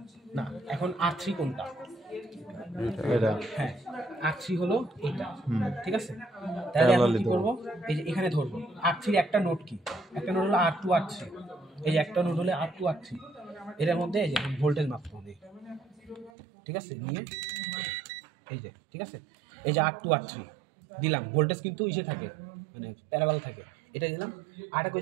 না, এখন R3 কোনটা, এটা হ্যাঁ R3 হলো এটা, ঠিক আছে? তাহলে এখন কি করব, এই যে এখানে ধরবো R3 এর একটা নোড কি, একটা নোড হলো R2 R3, এই যে একটা নোড হলো R2 R3, এর মধ্যে এই যে ভোল্টেজ মাপবো আমি, ঠিক আছে? নিয়ে এই যে, ঠিক আছে, এই যে R2 R3 দিলাম, ভোল্টেজ কিন্তু ইসে থাকে, মানে প্যারালাল থাকে, এটা দিলাম। আরটা কই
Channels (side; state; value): left; drops out; at 16.3 s